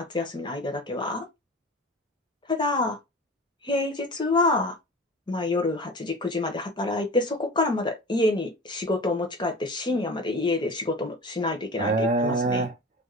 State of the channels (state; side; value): normal; both; correlation 0.35